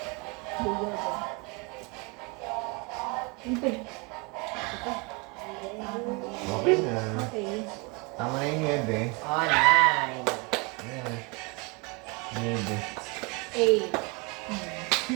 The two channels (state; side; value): quieter; left; 29.6 dB